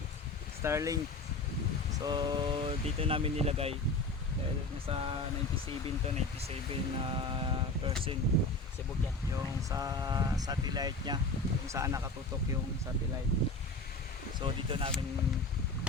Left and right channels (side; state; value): right; quieter; 3.0 dB